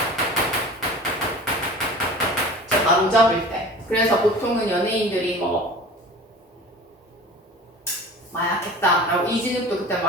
바로잡을 때. 그래서 보통은 연예인들이 마약했다라고 이진욱도 그때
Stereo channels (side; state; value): both; normal; correlation 0.39